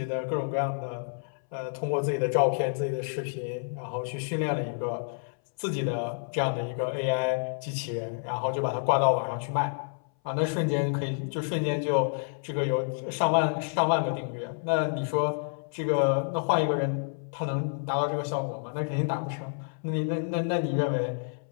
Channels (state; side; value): silent; right; 59 dB below the other